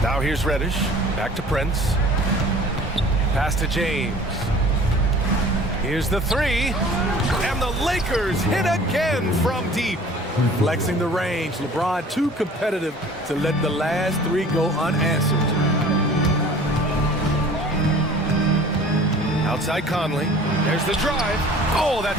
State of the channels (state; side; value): normal; both; correlation 0.47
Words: Now here's Reddish. Back to Prince. Pass to James. Here's the 3. And the Lakers hit again from deep. Flexing the range. LeBron too competitive to let the last 3 go unanswered. Outside Conley. There's the drive. Oh,